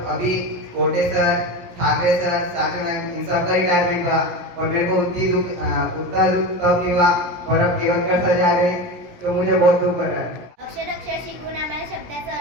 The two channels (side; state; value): left; late; 17 ms